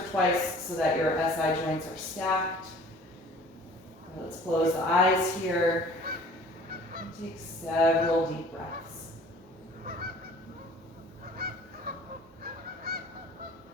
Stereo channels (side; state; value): both; normal; correlation 0.49